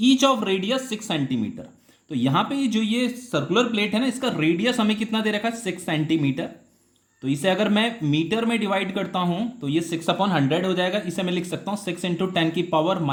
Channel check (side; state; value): both; identical; correlation 1.00